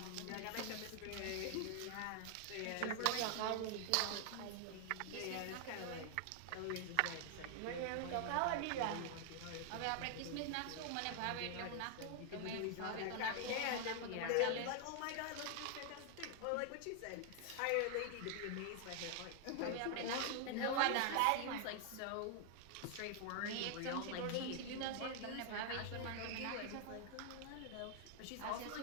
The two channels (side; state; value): both; different; correlation 0.00